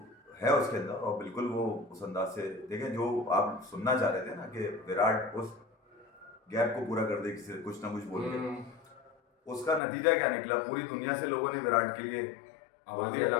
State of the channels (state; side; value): drops out; right; at 9.8 s